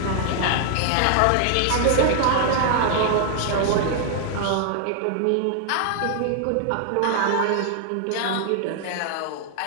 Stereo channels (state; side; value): different; both; correlation -0.01